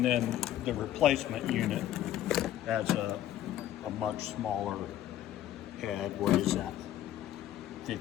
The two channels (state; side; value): quieter; right; 12.3 dB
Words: then the replacement unit has a much smaller head. What is that?